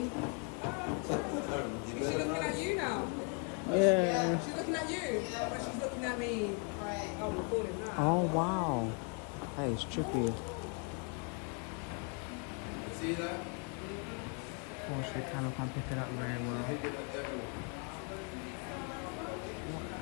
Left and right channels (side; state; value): right; quieter; 38.5 dB